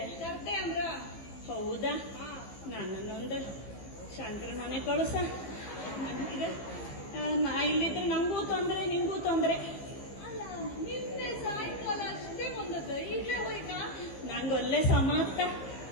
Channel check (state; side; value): late; right; 15 ms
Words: ಅಂದ್ರ? ಹೌದಾ, ನನ್ನೊಂದು ಶಂಕರ ಮನೆ ಕಳುಸ. ನಾ ಇಲ್ಲಿದ್ರೆ ನಂಗೂ ತೊಂದ್ರೆ, ನಿಂಗೂ ತೊಂದ್ರೆ. ನಿನ್ನೆ ಸಾಯಂಕಾಲ ಅಷ್ಟೇ ಬಂದದ್ದು, ಈಗಲೇ ಹೋಯ್ತಾ? ನಂಗೊಲ್ಲೆ ಸಮಾಪ್ತ,